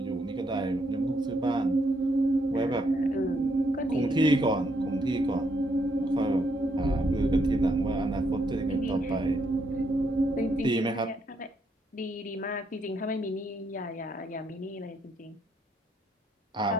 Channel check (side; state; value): both; normal; correlation 0.75